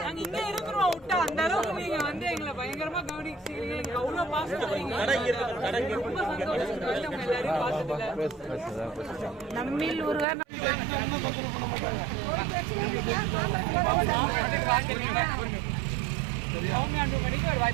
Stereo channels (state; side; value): drops out; left; at 10.2 s